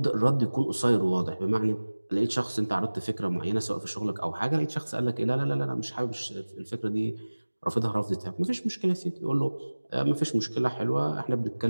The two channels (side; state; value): both; inverted; correlation -1.00